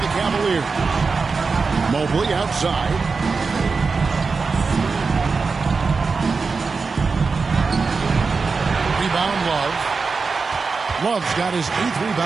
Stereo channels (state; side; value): quieter; left; 4.6 dB